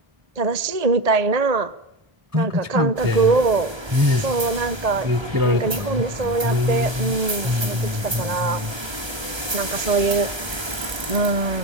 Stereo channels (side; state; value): left; late; 1.3 ms